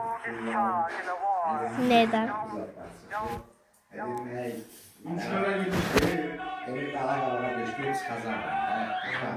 Neden? Emin dağlar beşiktaş kazandı.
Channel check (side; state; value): both; identical; correlation 1.00